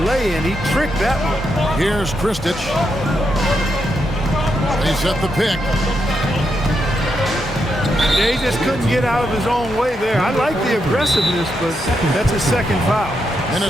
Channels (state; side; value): normal; both; correlation 0.82